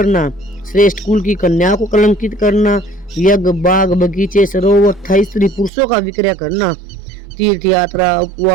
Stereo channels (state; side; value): drops out; left; at 5.7 s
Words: श्रेष्ठ कुल की कन्या को कलंकित करना, यज्ञ, बाग, बगीचे, सरोवर तथा स्त्री पुरुषों का विक्रय करना, तीर्थ यात्रा,